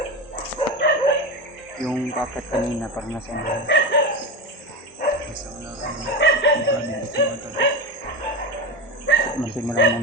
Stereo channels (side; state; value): both; normal; correlation 0.20